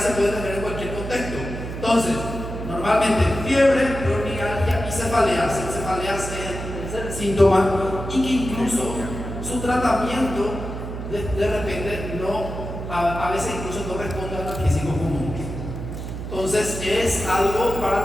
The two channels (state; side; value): noise; right; hum, 7 dB below the sound